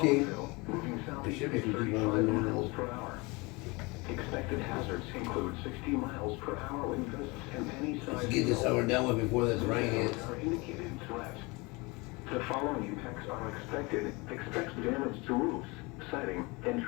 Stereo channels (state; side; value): quieter; right; 25.9 dB